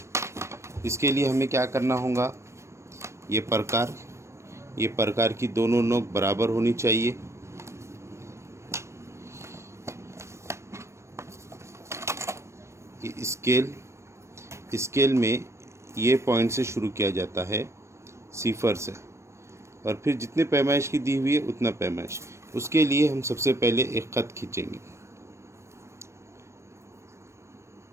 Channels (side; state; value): left; late; 0.13 ms